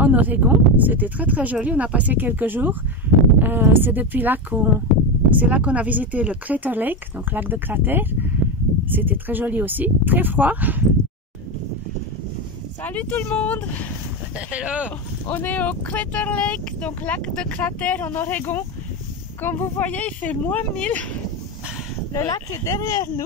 Oregon. C'était très joli. On a passé quelques jours. C'est depuis là qu'on a visité le Crater Lake, donc lac de cratère. C'était très joli aussi. Très froid. Salut tout le monde! Hello! On est au Crater Lake, donc lac de cratère en Oregon. Comme vous voyez, il fait -1000. Le lac est derrière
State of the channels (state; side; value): normal; both; correlation 0.15